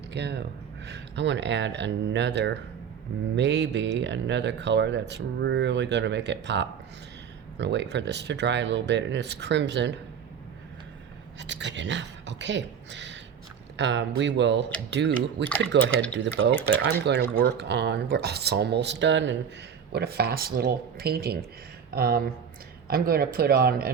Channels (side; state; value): left; quieter; 7.5 dB